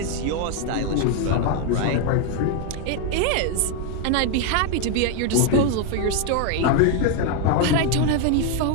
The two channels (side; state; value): both; different; correlation 0.01